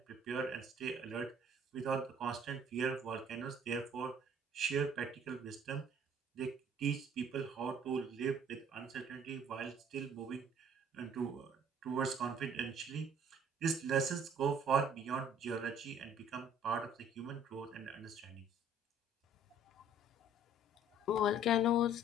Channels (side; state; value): both; normal; correlation 0.56